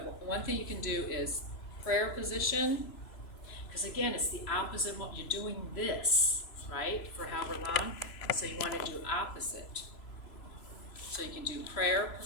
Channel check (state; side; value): late; right; 3.0 ms